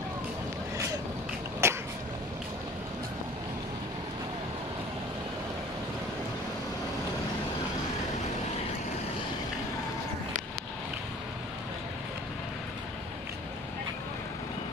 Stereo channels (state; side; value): normal; both; correlation 0.48